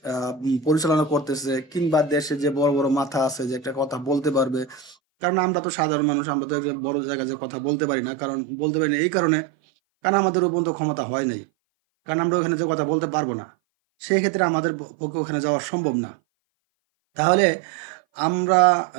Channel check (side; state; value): left; drops out; at 5.0 s